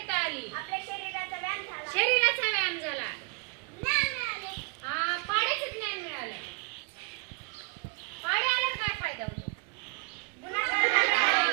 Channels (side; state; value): left; quieter; 31.2 dB